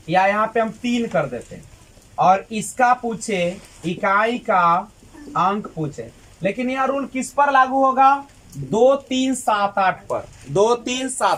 या यहाँ पे हम 3 कर देते हैं और इसका पूछे इकाई का अंक पूछे, लेकिन यह रूल किस पर लागू होगा? 2 3 7 8 पर। 2 3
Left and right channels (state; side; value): identical; both; correlation 1.00